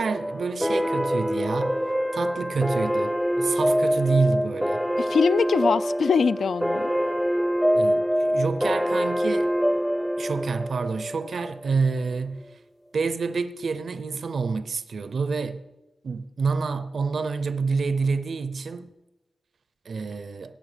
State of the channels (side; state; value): both; normal; correlation 0.93